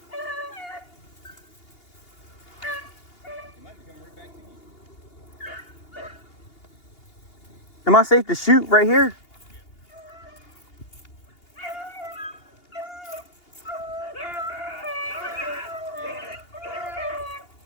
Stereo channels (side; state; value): right; late; 2.8 ms